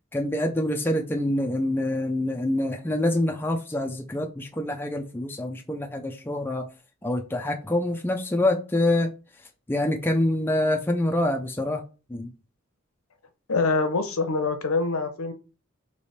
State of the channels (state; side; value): normal; both; correlation 0.61